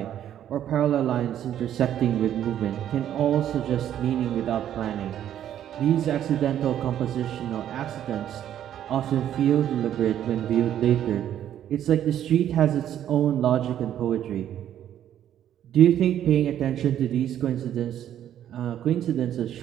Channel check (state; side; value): quieter; left; 10.8 dB